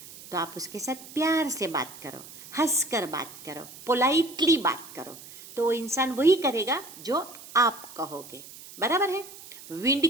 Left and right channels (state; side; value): noise; right; hiss, 17 dB below the sound